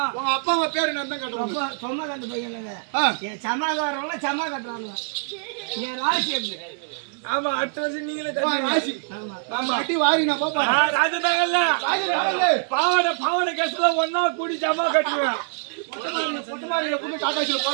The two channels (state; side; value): silent; left; digital silence